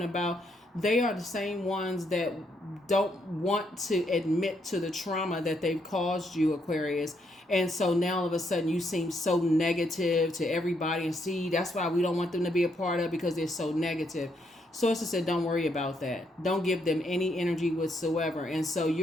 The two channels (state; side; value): normal; both; correlation 0.75